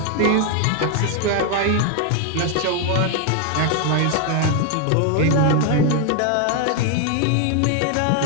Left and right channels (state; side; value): different; both; correlation 0.01